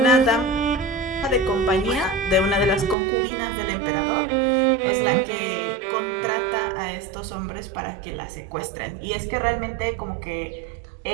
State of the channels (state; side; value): drops out; left; at 3.0 s